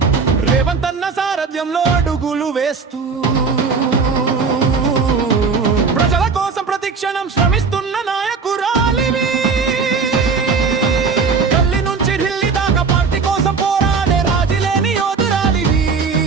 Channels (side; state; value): left; quieter; 5.0 dB